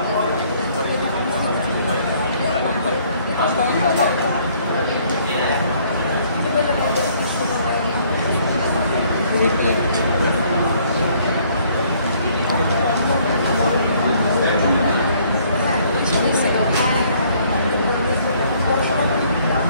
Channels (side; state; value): both; inverted; correlation -0.63